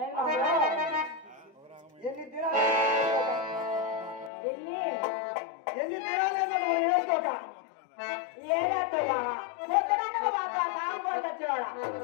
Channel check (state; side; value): drops out; right; at 4.3 s